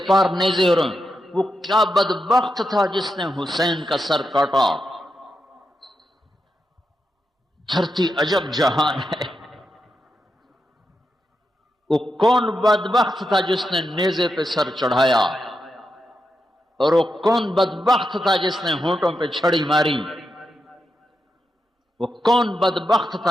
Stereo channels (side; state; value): both; normal; correlation 0.86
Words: پار نیزے ہو رہے ہیں۔ وہ کیا بدبخت تھا جس نے حسین کا سر کاٹا۔ دھرتی عجب جہان ہے، وہ کون بدبخت تھا جس نے نیزے پہ سر چڑھایا، اور وہ کون بدبخت تھا جس نے ہونٹوں پہ چھڑی ماری، وہ کون بدبخت